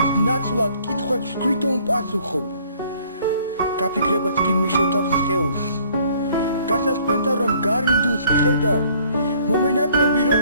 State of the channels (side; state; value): both; inverted; correlation -0.59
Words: ნაცვლად კითხვებს თვითონ პასუხობ გაფიქრებაც კი მიშოთავს სხეულს გასასწრებდა რომ გარინდულს ხედავ მომენატრები